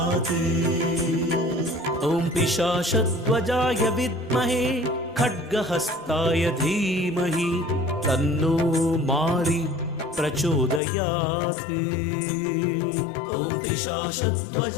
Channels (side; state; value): right; drops out; at 10.8 s